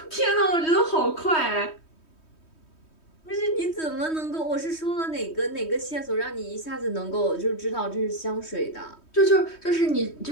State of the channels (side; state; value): right; late; 3.2 ms